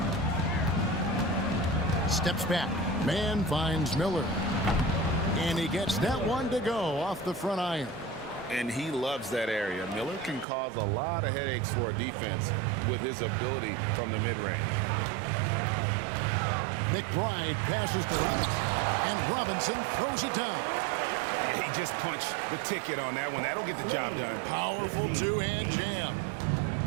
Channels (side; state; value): left; drops out; at 10.5 s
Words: Steps back. Man finds Miller. And he gets that one to go off the front iron. And he loves that area. Miller can cause a lot of headaches for a defense with his ability from the mid-range. McBride passes to Robinson, and Robinson throws it down. He just punched the ticket on that one. That'll get the job done. Powerful two-hand jam.